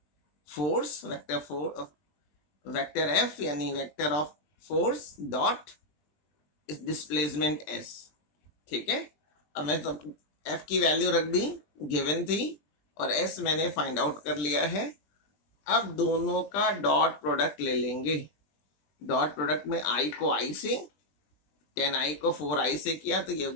force vector F यानी vector of force dot displacement S. ठीक है, अब मैं तो एफ की वैल्यू रख दी, गिवन थी, और एस मैंने फाइंड आउट कर लिया है। अब दोनों का डॉट प्रोडक्ट ले लेंगे। डॉट प्रोडक्ट में i को i से, 10i को 4i से किया तो ये हो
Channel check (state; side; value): late; right; 20 ms